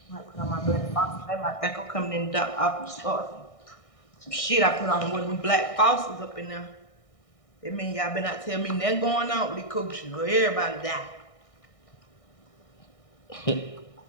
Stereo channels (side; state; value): right; late; 1.6 ms